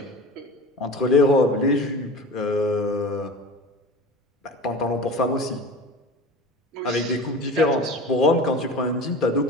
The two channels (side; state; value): both; normal; correlation 0.34